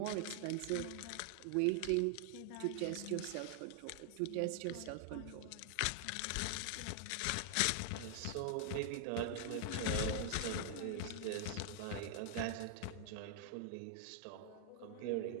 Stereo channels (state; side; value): different; both; correlation -0.01